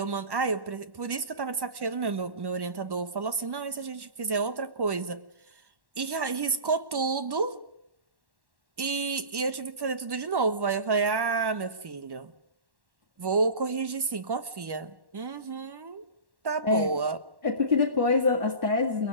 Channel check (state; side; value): late; left; 1.1 ms